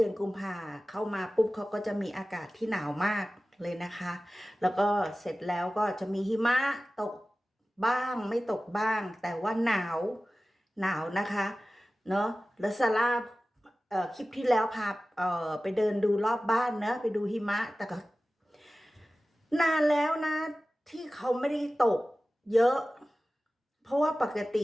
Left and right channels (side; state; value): both; normal; correlation 0.96